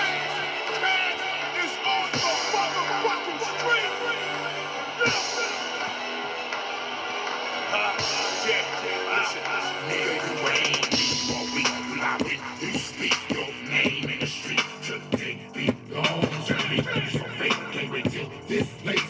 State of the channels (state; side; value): identical; both; correlation 1.00